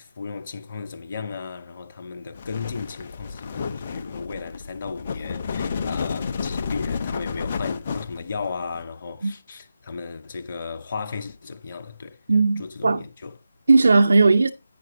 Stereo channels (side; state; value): both; inverted; correlation -0.90